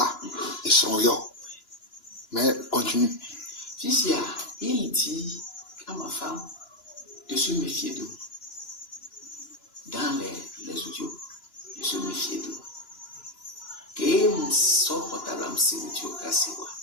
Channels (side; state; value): right; late; 2.9 ms